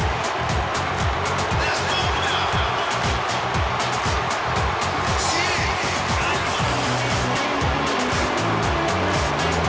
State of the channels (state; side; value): identical; both; correlation 1.00